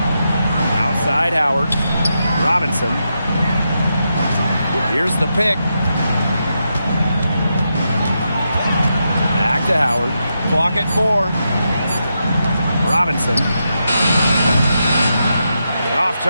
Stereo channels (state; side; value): inverted; both; correlation -0.85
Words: Outside Howard. Robinson. Here's the pick. Back to Howard. Clock at 4. Robinson. Off